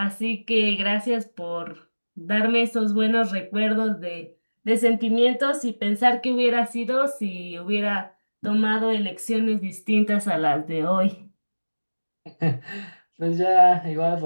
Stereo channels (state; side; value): inverted; both; correlation -1.00